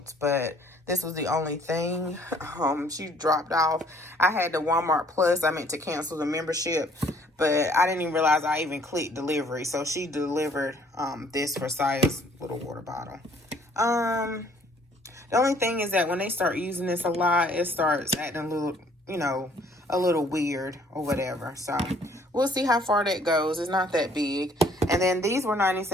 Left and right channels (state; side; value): normal; both; correlation 0.60